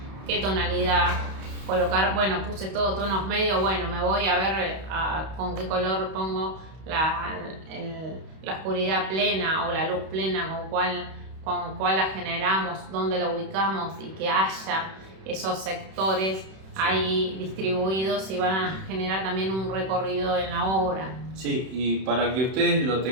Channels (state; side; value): late; left; 31 ms